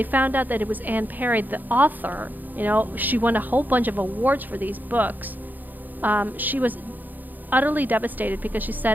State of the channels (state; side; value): late; left; 0.085 ms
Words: found out that it was Anne Perry, the author. She won a whole bunch of awards for these books. She was utterly devastated because she